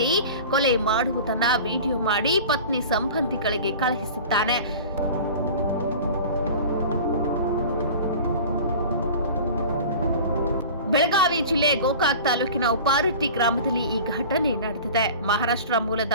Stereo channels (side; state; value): both; inverted; correlation -0.38